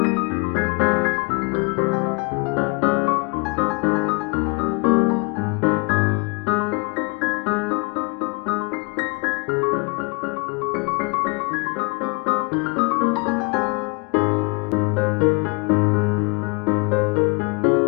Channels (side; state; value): right; quieter; 30.8 dB